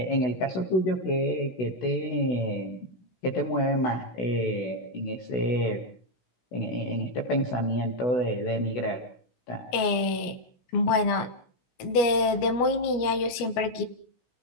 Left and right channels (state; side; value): late; right; 17 ms